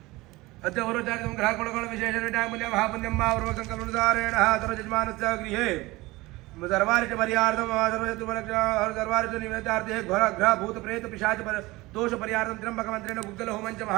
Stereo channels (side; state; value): left; quieter; 20.8 dB